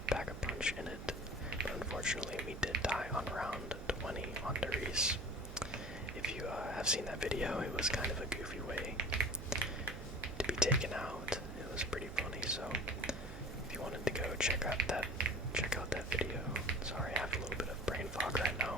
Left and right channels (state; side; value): noise; right; hum, 11 dB below the sound